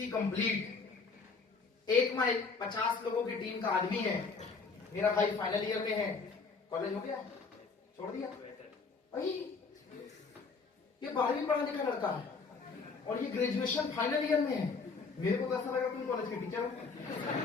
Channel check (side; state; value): right; quieter; 4.6 dB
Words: complete. 1 mile 50 लोगों की टीम का आदमी है। मेरा भाई फाइनल ईयर में है। कॉलेज हो गया, छोड़ दिया? ये 12वीं पढ़ा लिखा लड़का है और ये ग्रेजुएशन फाइनल ईयर में है। मेरे को तो ऐसा लगा तुम कॉलेज के टीचर हो।